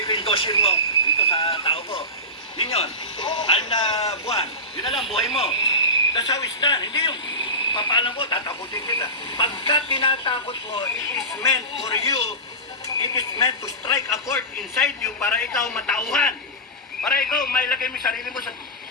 ko yung dossier mo dito sa tao ko. Yun yun. 6 na buwan. Yun na lang, buhay mo. That's how it's done. Hindi yung papaalam ko, tatakutin kita. Pagka tinatakot mo, it is meant for you, it is meant to strike a chord inside you para ikaw matauhan. Para ikaw mailagay mo yung sarili mo sa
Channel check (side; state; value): both; normal; correlation -0.18